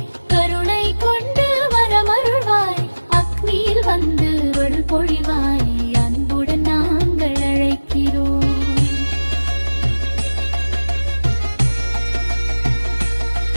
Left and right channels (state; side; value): inverted; both; correlation -1.00